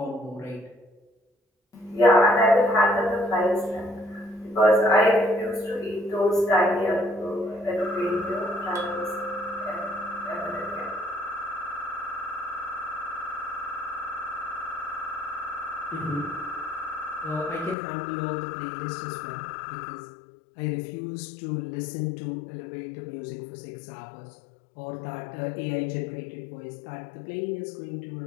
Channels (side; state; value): right; drops out; at 17.8 s